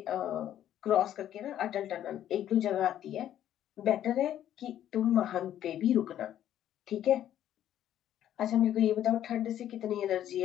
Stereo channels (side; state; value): right; quieter; 11.3 dB